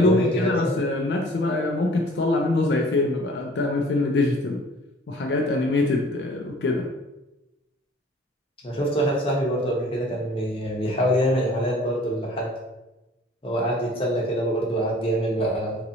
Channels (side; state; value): both; normal; correlation 0.51